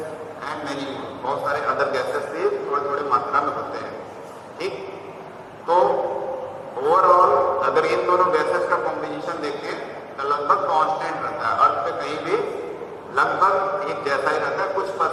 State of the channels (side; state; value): both; identical; correlation 1.00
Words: and many बहुत सारे अदर गैसेस भी थोड़े थोड़े मात्रा में होते हैं। ठीक, तो ओवरऑल अगर इन दोनों गैसेस का कॉम्बिनेशन देखें तो लगभग कांस्टेंट रहता है, अर्थ पे कहीं भी लगभग एक जैसा ही रहता है। कुछ